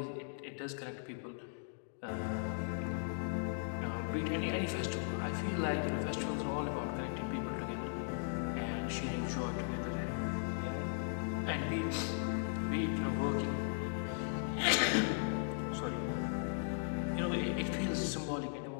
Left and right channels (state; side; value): silent; right; digital silence